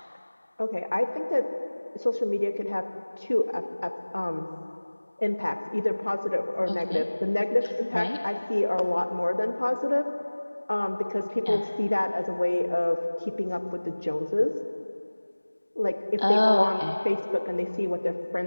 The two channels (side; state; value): both; inverted; correlation -1.00